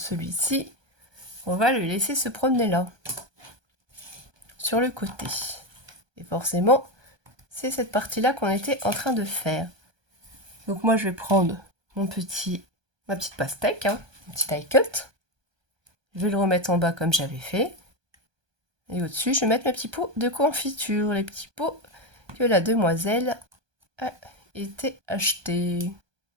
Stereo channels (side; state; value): left; late; 1.2 ms